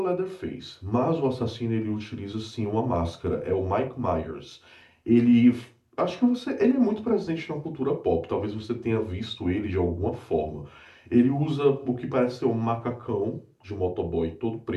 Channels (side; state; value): both; identical; correlation 1.00